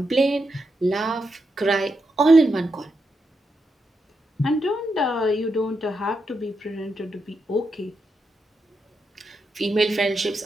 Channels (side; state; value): both; normal; correlation 0.84